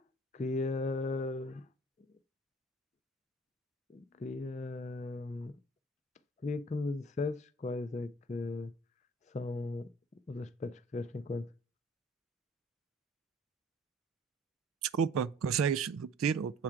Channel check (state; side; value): normal; both; correlation 0.51